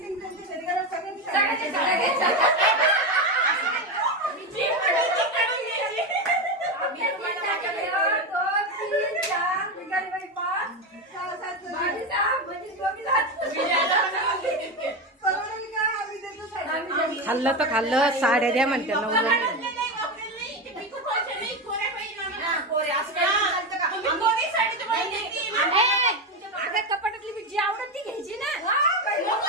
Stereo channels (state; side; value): normal; both; correlation 0.15